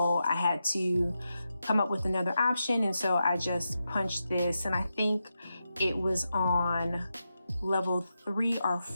I had to come up with another option. And so I just punched this, and I think it was on level 3 or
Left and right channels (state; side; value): inverted; both; correlation -0.88